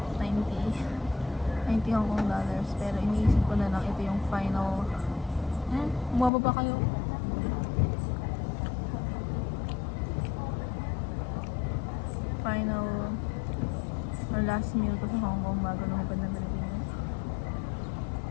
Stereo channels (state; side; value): drops out; right; at 6.3 s